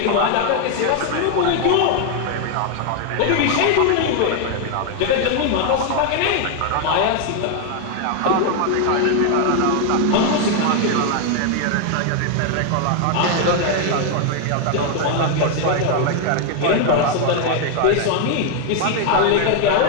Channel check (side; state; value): both; different; correlation 0.00